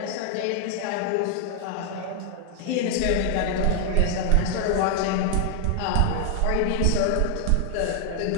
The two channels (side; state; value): both; different; correlation 0.00